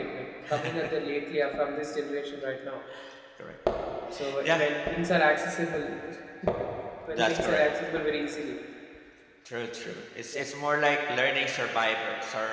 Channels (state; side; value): identical; both; correlation 1.00